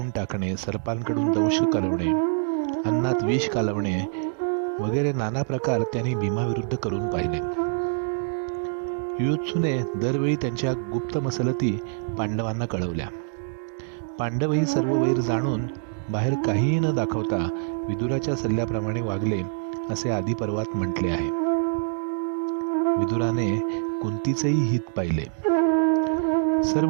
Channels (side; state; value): left; silent; digital silence